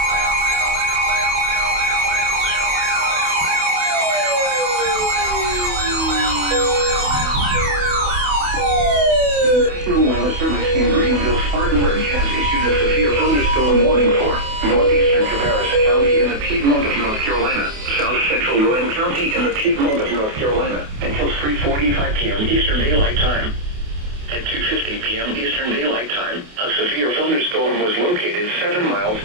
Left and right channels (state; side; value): late; left; 28 ms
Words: National Weather Service in Greenville, Spartanburg has issued a severe thunderstorm warning for northeastern Cabarrus County in the Piedmont of North Carolina, south central Rowan County in the Piedmont of North Carolina, until 3:45 p.m. Eastern Daylight Time. At 2:50 p.m. Eastern Daylight Time, a severe thunderstorm was located 7 miles